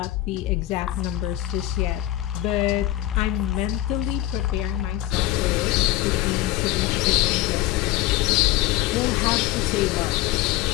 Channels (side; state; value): right; quieter; 15.6 dB